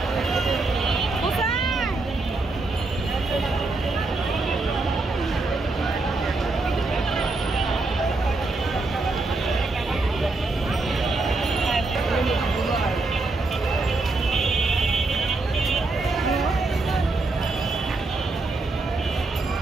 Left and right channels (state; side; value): quieter; left; 3.3 dB